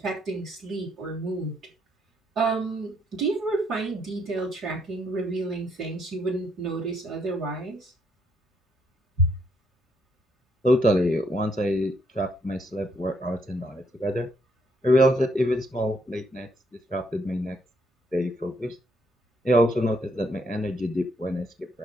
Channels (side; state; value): both; normal; correlation 0.72